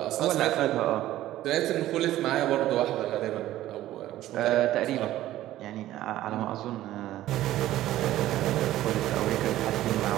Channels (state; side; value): quieter; left; 14.4 dB